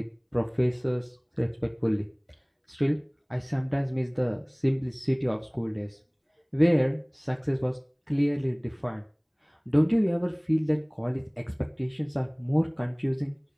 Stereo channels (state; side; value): identical; both; correlation 1.00